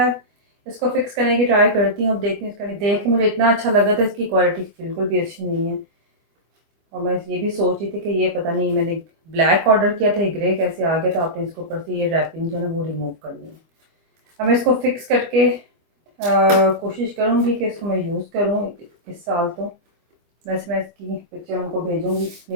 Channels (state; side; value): late; left; 25 ms